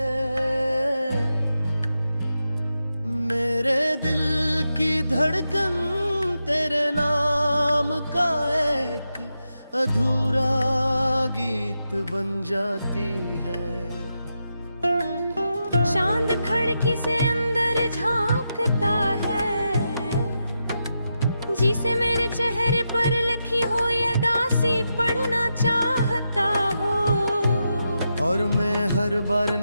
मेरे दिल की धड़कन तेरे नाम का एक अधूरा गीत बन जाती है। चांद खिड़की से अंदर झांकता है, जिसे मेरे चेहरे पर लिखी हो ये दासी पढ़ना चाहता हो। और मैं हर बार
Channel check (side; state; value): both; inverted; correlation -0.87